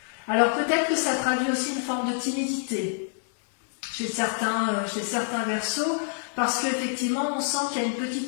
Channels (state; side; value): silent; right; digital silence